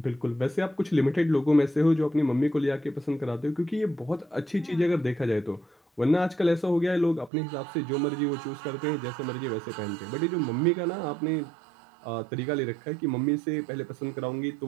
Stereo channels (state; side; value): drops out; left; at 7.3 s